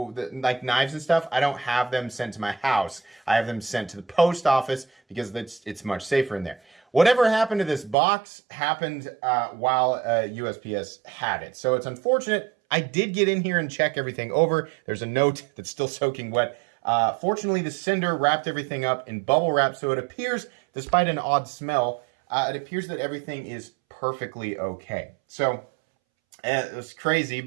knives and stuff. I don't have them sent to my house. I have them sent to the post office because it's much safer in there. Whatever happened to this box happened while USPS had it. So it's unfortunate. I did get in here and check everything over. There's a note that's still soaking wet. Fortunately, the sender wrapped everything up in bubble wrap, so it appears, despite an odd smell, it appears that everything is perfectly okay. So, it was crazy,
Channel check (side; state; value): left; drops out; at 8.0 s